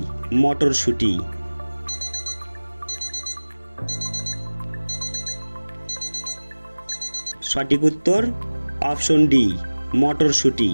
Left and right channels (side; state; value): both; inverted; correlation -1.00